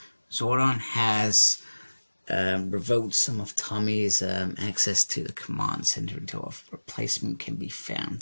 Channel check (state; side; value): inverted; both; correlation -1.00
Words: Zordon has revoked some of Tommy's access to the command center until a replacement can be